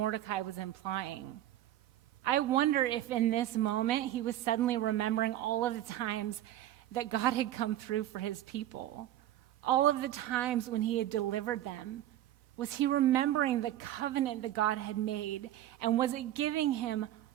was implying. I wonder if in this moment he was suddenly remembering all of the times that God had come through for his people, all of the times when he had delivered them. Was he remembering the covenant that God had made? And was it giving him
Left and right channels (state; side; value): quieter; left; 13.1 dB